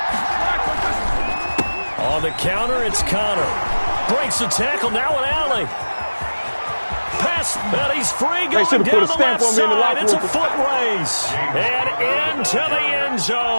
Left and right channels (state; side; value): inverted; both; correlation -1.00